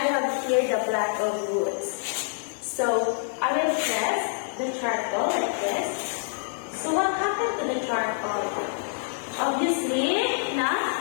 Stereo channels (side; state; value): right; silent; 61 dB below the other